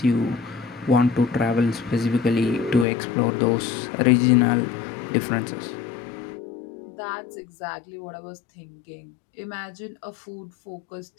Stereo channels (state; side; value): drops out; right; at 2.9 s